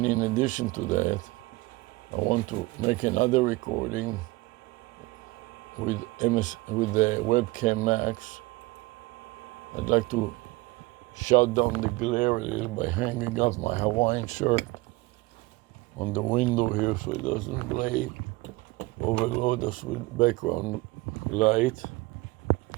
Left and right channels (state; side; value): quieter; left; 21.9 dB